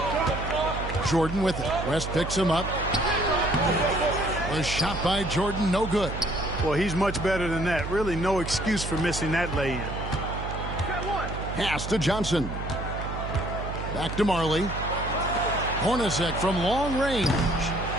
Jordan with it. West picks him up. The shot by Jordan, no good. Well, he's much better than that. Really no excuse for missing that lay-in. Pass to Johnson. Back to Marley. Hornacek from long range.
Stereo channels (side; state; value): right; noise; hum, 6 dB below the sound